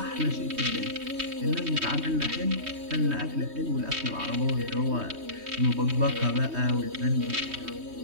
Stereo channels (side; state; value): left; late; 3.2 ms